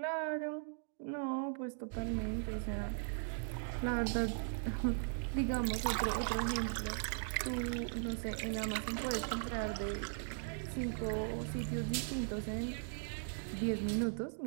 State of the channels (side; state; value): left; silent; digital silence